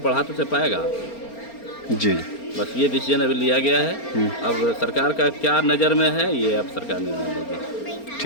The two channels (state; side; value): late; right; 4.3 ms